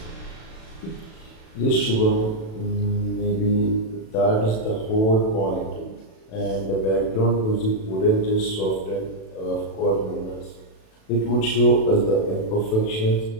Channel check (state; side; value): late; right; 37 ms